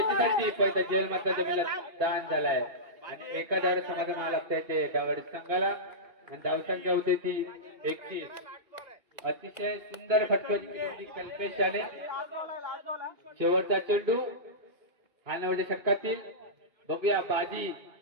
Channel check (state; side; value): late; left; 1.9 ms